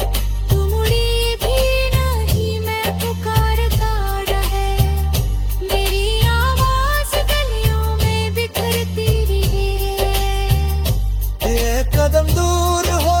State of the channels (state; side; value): identical; both; correlation 1.00